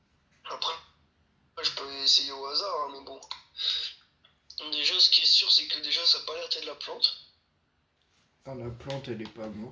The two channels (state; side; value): identical; both; correlation 1.00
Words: Après, je peux essayer au hasard, hein, mais bon. Déjà, ce qui est sûr, c'est que déjà, ça n'a pas l'air d'être de la plante. Enfin, la plante, elle est pas